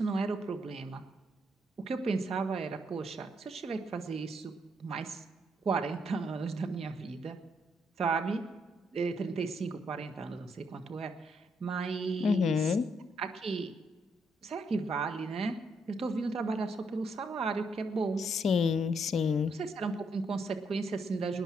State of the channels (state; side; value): normal; both; correlation 0.75